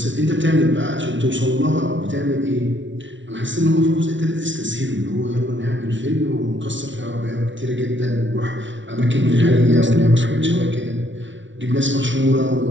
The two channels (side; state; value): left; late; 0.55 ms